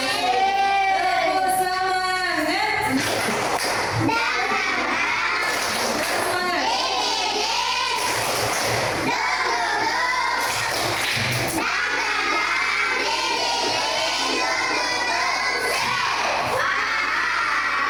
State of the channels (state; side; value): noise; left; hum, 21 dB below the sound